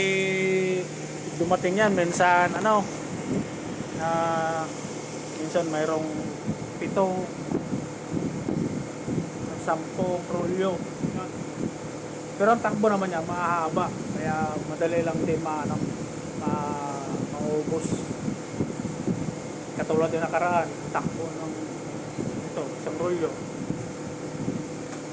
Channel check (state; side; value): identical; both; correlation 1.00